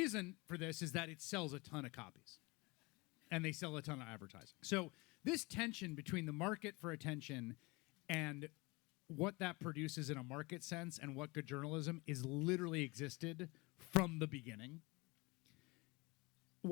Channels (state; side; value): quieter; right; 25.5 dB